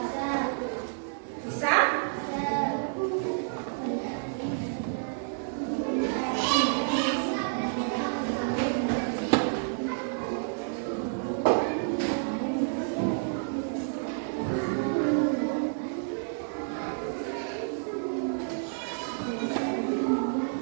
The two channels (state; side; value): silent; left; 58 dB below the other